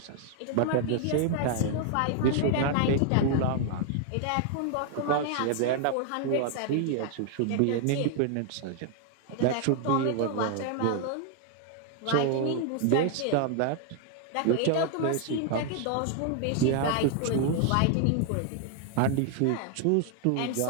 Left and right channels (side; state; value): both; different; correlation 0.00